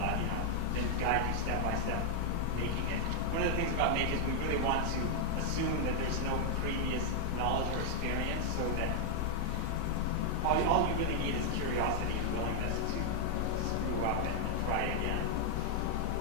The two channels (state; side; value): different; both; correlation 0.00